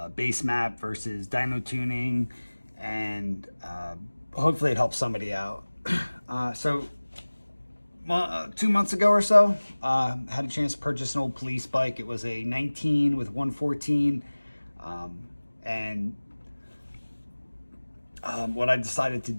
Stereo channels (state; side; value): inverted; both; correlation -1.00